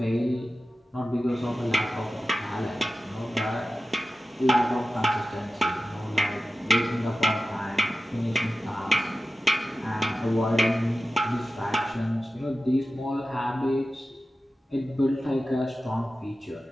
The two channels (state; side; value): normal; both; correlation 0.94